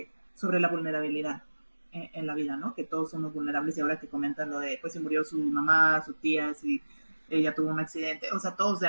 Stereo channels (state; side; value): inverted; both; correlation -1.00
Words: sobre la vulnerabilidad en la vida, ¿no? Que todos somos vulnerables y ahora que comentan lo de, pues, si murió su mamá, su tía, si ella tuvo un accidente, o sea, todos de